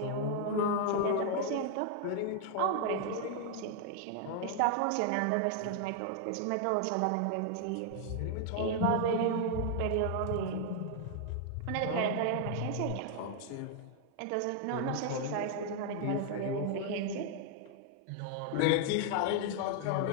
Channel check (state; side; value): different; both; correlation 0.00